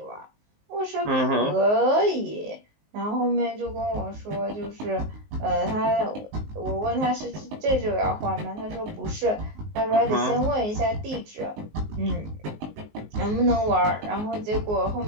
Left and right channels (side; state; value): left; late; 19 ms